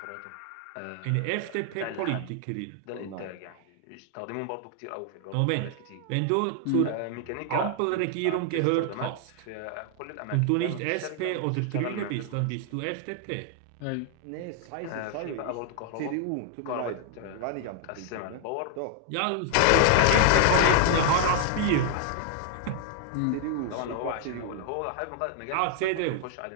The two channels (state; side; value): different; both; correlation 0.00